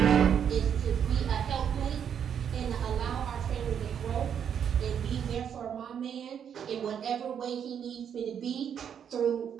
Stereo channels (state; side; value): quieter; left; 8.3 dB